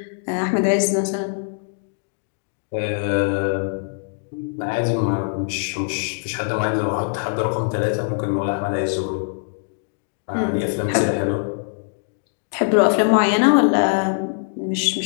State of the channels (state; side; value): silent; right; digital silence